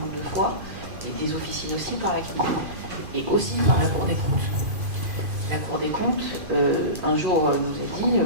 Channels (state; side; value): late; left; 2.5 ms